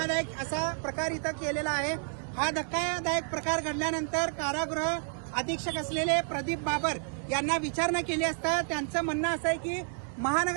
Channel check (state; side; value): silent; left; 58 dB below the other